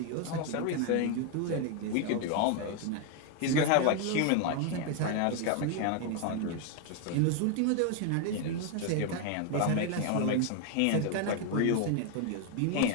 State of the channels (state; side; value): different; both; correlation 0.01